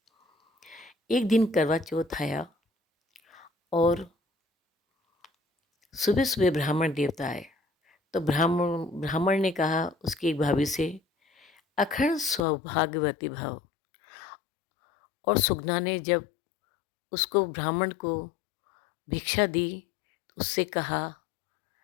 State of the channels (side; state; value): right; drops out; at 12.4 s